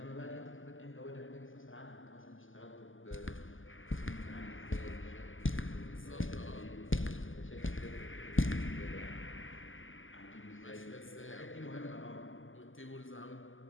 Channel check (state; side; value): late; right; 0.58 ms